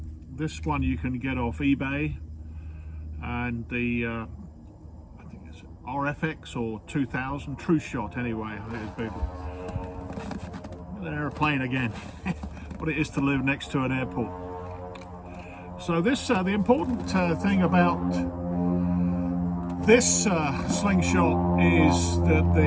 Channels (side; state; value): both; identical; correlation 1.00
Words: this one you can get off eBay, and the RFX or 2000 True Shot anyway. There's people. An airplane again. What it is to live next to an airport. So this the important thing about this Slingshot is that